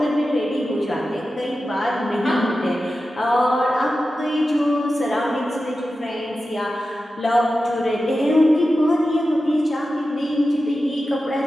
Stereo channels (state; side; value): normal; both; correlation 0.93